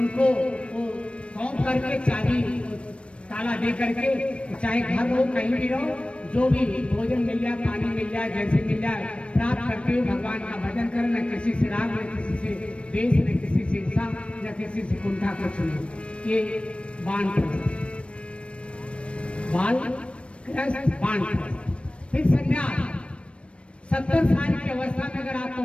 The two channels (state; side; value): late; right; 0.060 ms